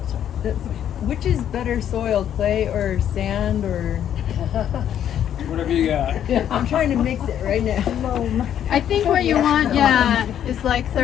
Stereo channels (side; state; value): right; quieter; 10.0 dB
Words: sorry. Which is better soil, clay or sand or? Whatever you got. I'm trying to mix it right now. I think what you want, is like